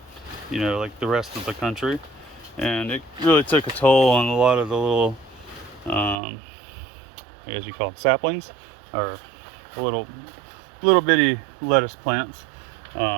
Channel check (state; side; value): drops out; left; at 6.2 s